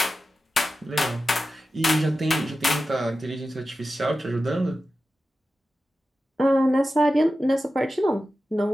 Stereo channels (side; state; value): both; normal; correlation 0.93